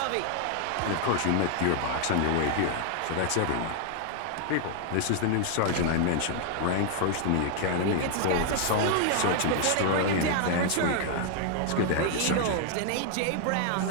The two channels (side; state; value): both; different; correlation 0.00